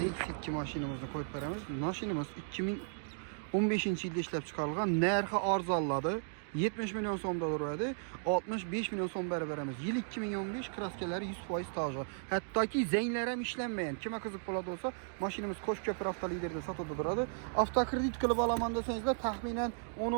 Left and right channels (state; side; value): silent; left; digital silence